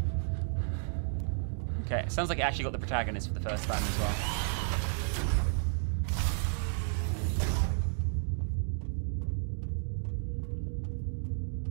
Okay, it sounds like it actually got the protagonist for the first time as well.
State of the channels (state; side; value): silent; left; digital silence